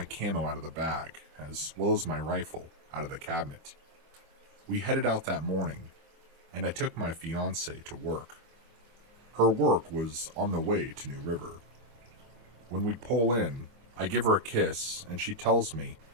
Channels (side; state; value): left; late; 25 ms